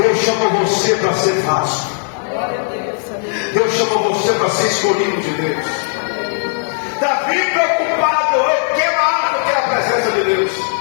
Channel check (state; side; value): silent; right; 60 dB below the other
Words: chamou você para ser vaso. Deus chamou você para ser escolhido de Deus. Davi preocupado, eu quero a arma, eu quero a presença de Deus.